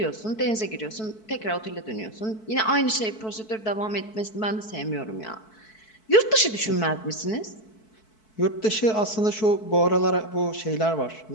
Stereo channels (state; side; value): late; right; 4.6 ms